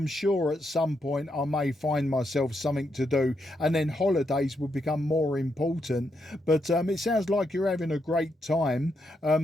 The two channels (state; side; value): normal; both; correlation 0.80